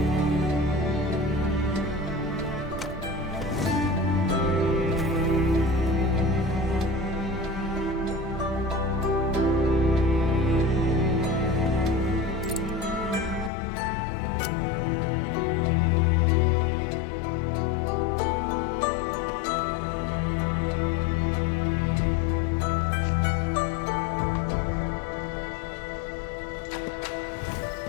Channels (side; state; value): right; drops out; at 13.5 s